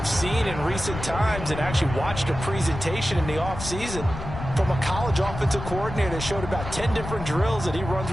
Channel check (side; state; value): left; noise; rumble, 8 dB below the sound